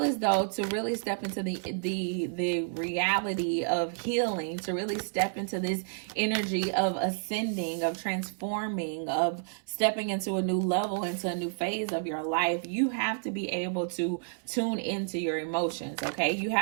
as though to really step into the reality of healing, to really step into this energy of ascending, of transforming, of stepping into a new level, into a new phase of your life, you have to be able to tune into your emotions. Okay. You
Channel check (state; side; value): silent; left; 58 dB below the other